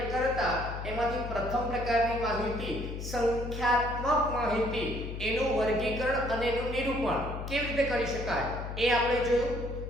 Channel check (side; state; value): left; noise; hum, 7 dB below the sound